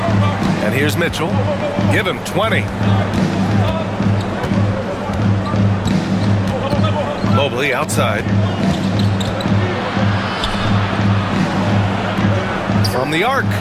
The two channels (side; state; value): both; identical; correlation 1.00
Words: And here's Mitchell. Give him 20. Mobley outside. From the arc.